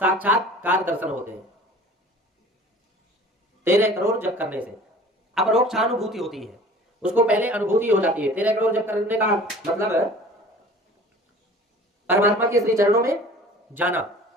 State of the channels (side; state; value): both; normal; correlation 0.45